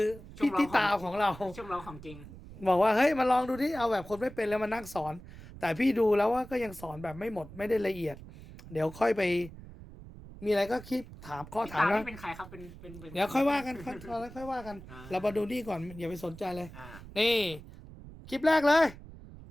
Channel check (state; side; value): noise; right; rumble, 16 dB below the sound